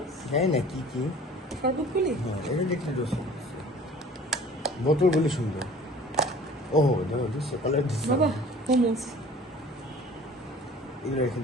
হ্যাঁ না কি কি শরবতগুলি। হ্যাঁ এটা দেখলে জুস বোতলগুলি সুন্দর। ও দেখো দিস কালার দিস বাবা মোমোস এগুলো রেখে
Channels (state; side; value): normal; both; correlation 0.47